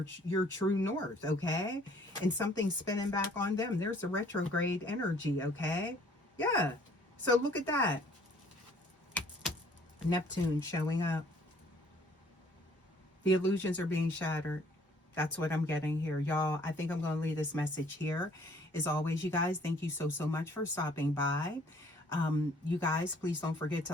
true north, okay? And something's spinning back on them. There's a retrograde energy, okay? Yeah. So look at that. Neptune showing up. The illusions are being shattered. That's what I'm getting here. Y'all, I think I'm going to leave this message here. As always, you guys, thank you so much for stopping by. You guys, please don't forget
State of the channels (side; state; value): both; normal; correlation 0.58